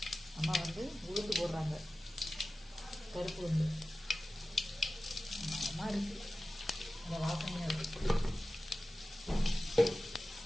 அம்மா வந்து உளுந்து போடுறாங்க. பருப்பு வந்து அம்மா இருக்குது. அந்த வாசனையாக இருக்குது.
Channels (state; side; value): normal; both; correlation 0.95